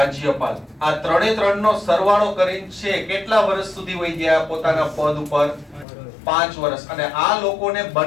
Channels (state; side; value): drops out; right; at 5.9 s